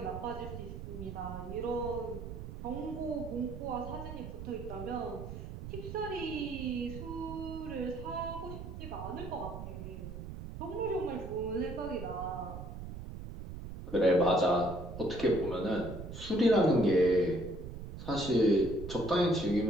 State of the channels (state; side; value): noise; right; rumble, 9 dB below the sound